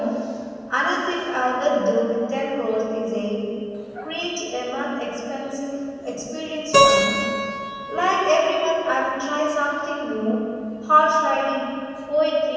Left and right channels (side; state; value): both; identical; correlation 1.00